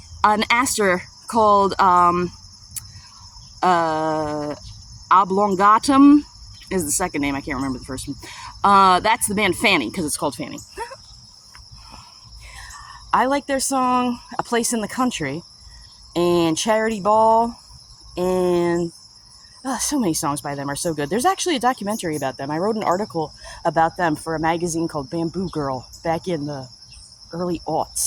an aster called Oblongatum is the second name. I can't remember the first one. That's the band Fanny, because it's called Fanny. I like their song, A Place in the Country, and Charity Ball, and so many songs by them are so good. There's actually a documentary about them. I wrote an article about them for a magazine called Bamboo Girl back in the early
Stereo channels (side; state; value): both; identical; correlation 1.00